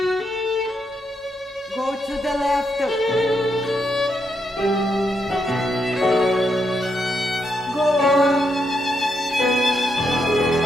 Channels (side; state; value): both; normal; correlation 0.80